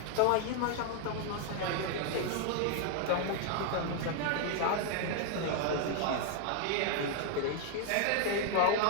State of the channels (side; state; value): both; different; correlation 0.00